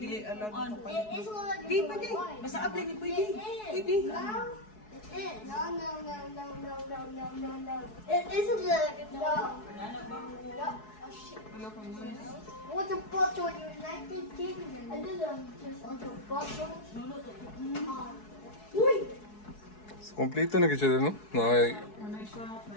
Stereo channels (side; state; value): right; late; 4.7 ms